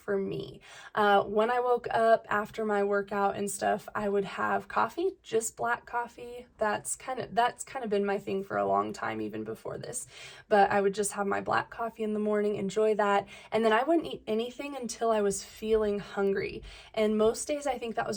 me. When I woke up after my workout and stuff, I would have coffee, just black coffee. That's kind of been my thing for a long time, even before this. But I would just have my black coffee in the morning, enjoy that, and then I wouldn't eat anything until I was feeling hungry. And most days I think that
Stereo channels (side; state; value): both; identical; correlation 1.00